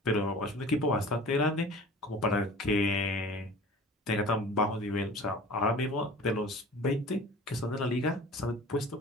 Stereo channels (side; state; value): both; normal; correlation 0.42